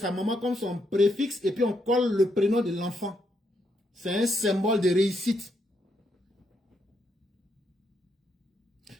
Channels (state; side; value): normal; both; correlation 0.78